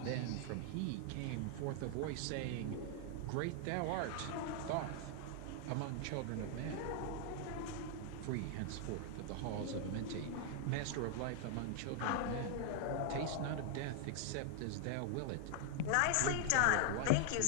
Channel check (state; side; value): different; both; correlation 0.00